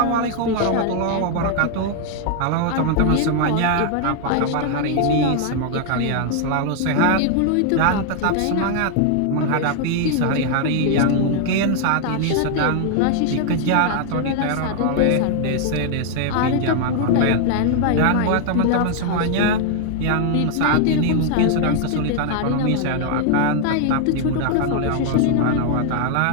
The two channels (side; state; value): both; different; correlation 0.00